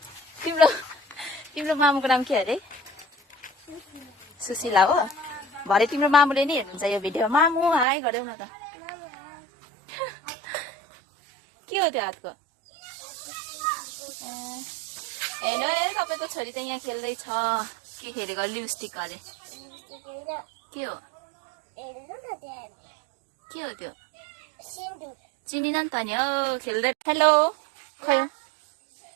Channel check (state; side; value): drops out; left; at 7.9 s